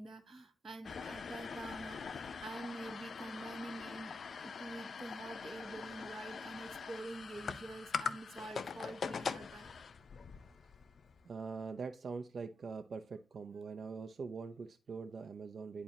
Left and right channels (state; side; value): normal; both; correlation 0.84